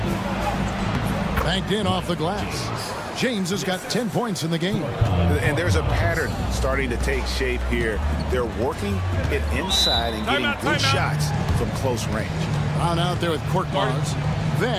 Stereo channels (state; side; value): identical; both; correlation 1.00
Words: Banked in off the glass. James has got 10 points in the game. And there's a pattern starting to take shape here. They're working it inside and getting good shots from close range. Brown out there with Korkmaz.